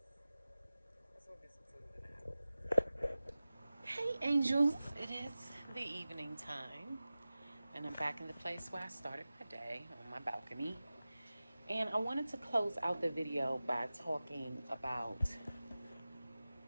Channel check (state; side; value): inverted; both; correlation -0.96